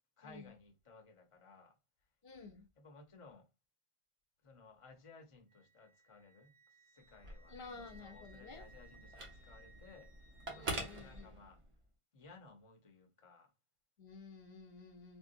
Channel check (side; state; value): left; late; 1.5 ms